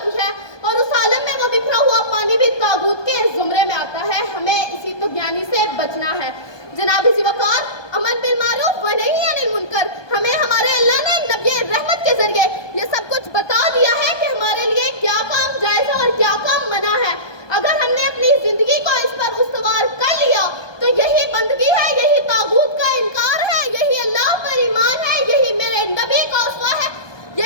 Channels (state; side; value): late; right; 1.2 ms